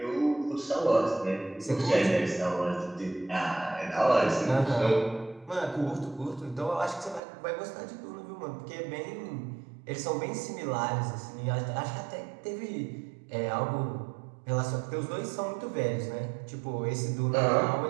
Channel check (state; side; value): drops out; left; at 7.2 s